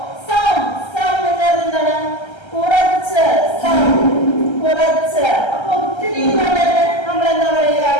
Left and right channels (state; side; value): late; right; 1.3 ms